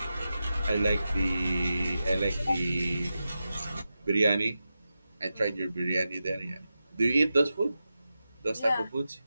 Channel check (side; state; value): both; inverted; correlation -0.91